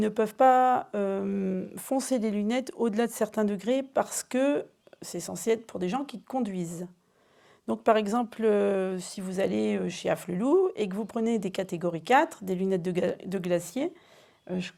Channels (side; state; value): both; identical; correlation 1.00